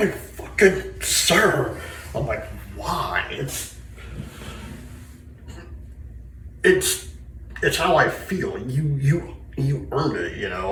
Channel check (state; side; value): identical; both; correlation 1.00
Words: fucking sir." I'm like, why? It's how I feel. You earned